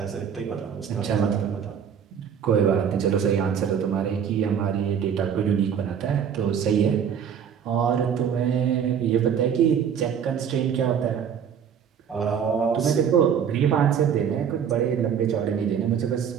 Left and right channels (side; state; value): left; quieter; 7.9 dB